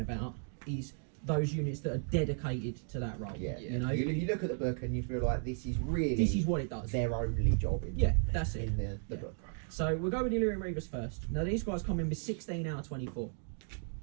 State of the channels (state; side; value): silent; left; 55 dB below the other